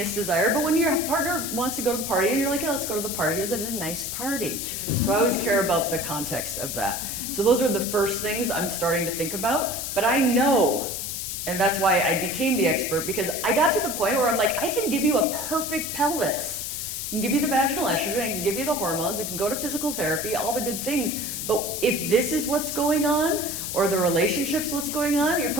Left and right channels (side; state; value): left; noise; hiss, 4 dB below the sound